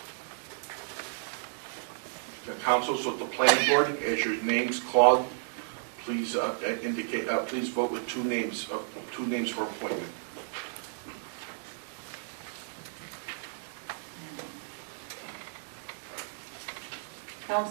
The council, so the planning board, as your names called, please indicate. Please vote with 2 names. 2 names for appointment.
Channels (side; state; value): left; silent; digital silence